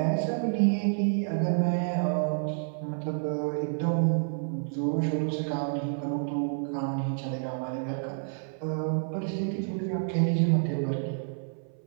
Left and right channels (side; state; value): left; silent; 56 dB below the other